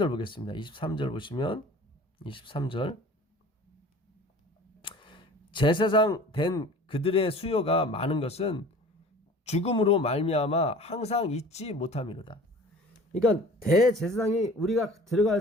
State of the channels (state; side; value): normal; both; correlation 0.45